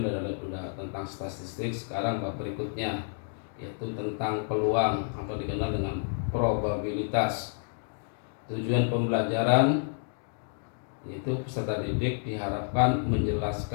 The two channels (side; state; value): right; silent; digital silence